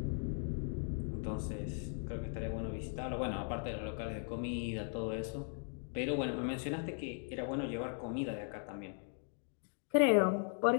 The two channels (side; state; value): right; silent; 52 dB below the other